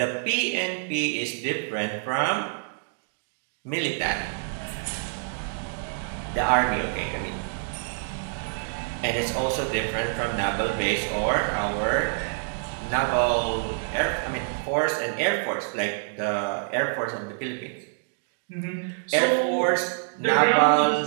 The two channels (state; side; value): silent; left; digital silence